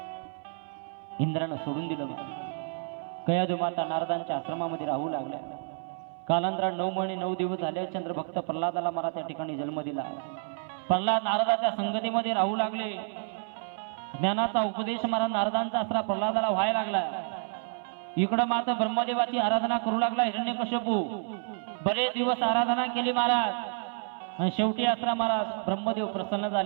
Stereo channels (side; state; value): left; silent; 58 dB below the other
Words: इंद्रानं सोडून दिलं. कयाधू माता नारदांच्या आश्रमामध्ये राहू लागल्या. कालांतरात 9 महिने 9 दिवस झाले. चंद्रभक्त प्रल्हादाला मला त्या ठिकाणी जन्म दिला. प्रल्हाद नारदाच्या संगतीमध्ये राहू लागले. ज्ञानाचा उपदेश महाराज नारदांचा असला प्रल्हादाला व्हायला लागला. इकडं मात्र ब्रह्मदेवाची आराधना करू लागला हिरण्यकश्यपू. बरेच दिवस आराधना केली महाराज आणि शेवटी असला महाराज ब्रह्मदेव प्रसन्न